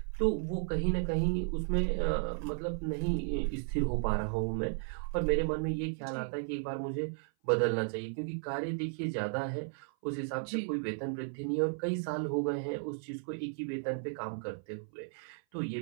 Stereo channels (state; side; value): silent; left; 55 dB below the other